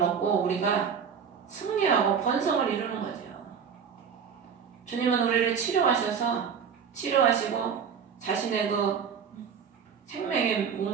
우리가 승리하고 번성을 이루는 거죠. 주님은 우리를 치료하시고 자신의 그 생명의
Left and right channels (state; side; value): quieter; left; 7.0 dB